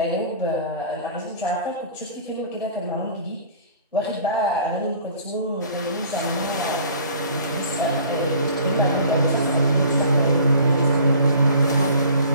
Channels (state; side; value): inverted; both; correlation -0.48